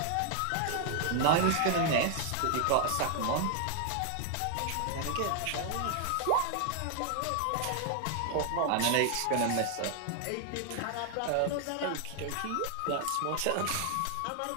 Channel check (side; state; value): both; different; correlation 0.00